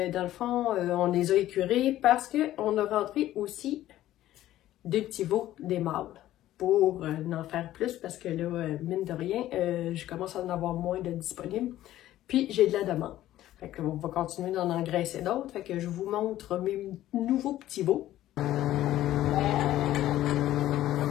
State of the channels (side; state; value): right; quieter; 13.9 dB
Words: le fond, on les a écurés parce qu'on a rentré aussi deux petits veaux, des mâles, pour en faire plus parce que là, mine de rien, je commence à en avoir moins de disponibles. Puis, j'ai de la demande. Fait qu'on va continuer d'en engraisser d'autres. Fait que je vous montre mes nouveaux petits veaux. Il